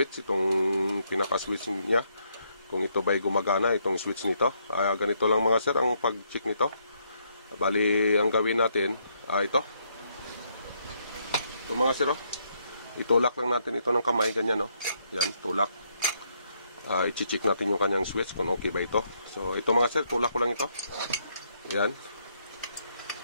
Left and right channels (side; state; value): both; inverted; correlation -0.74